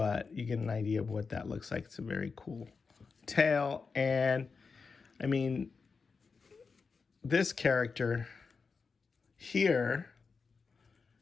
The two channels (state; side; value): quieter; right; 4.9 dB